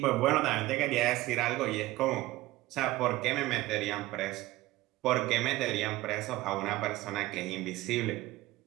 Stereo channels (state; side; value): quieter; left; 17.8 dB